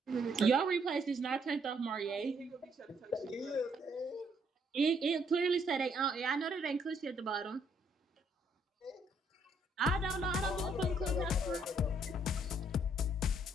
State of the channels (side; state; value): both; normal; correlation 0.69